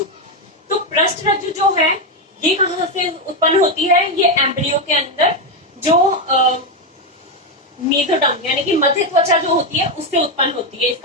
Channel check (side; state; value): both; normal; correlation 0.07